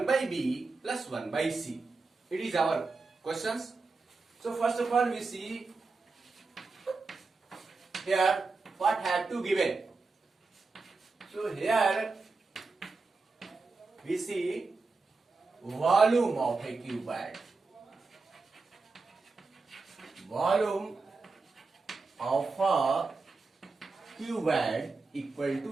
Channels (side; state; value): left; quieter; 4.0 dB